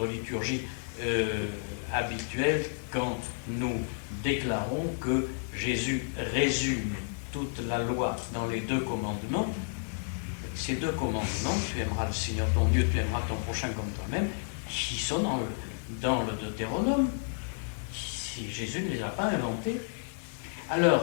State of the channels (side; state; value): right; silent; digital silence